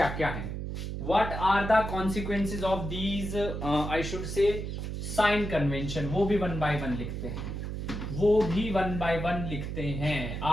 क्या हैं? What are the consequences of these, I should say sign convention, वो भी वन बाय वन लिखते हैं।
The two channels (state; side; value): noise; right; hum, 5 dB below the sound